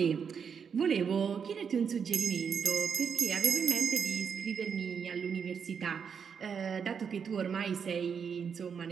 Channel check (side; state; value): left; quieter; 6.7 dB